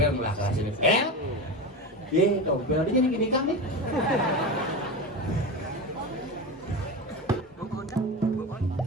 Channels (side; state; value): both; normal; correlation 0.23